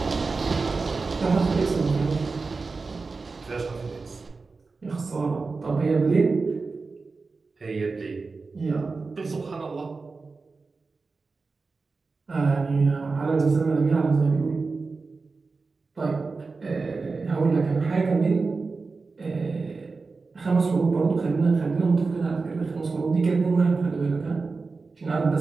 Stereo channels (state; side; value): quieter; left; 4.2 dB